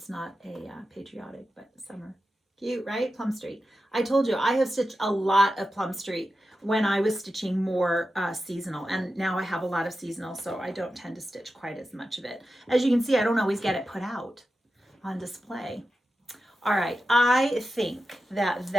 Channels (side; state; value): both; normal; correlation 0.91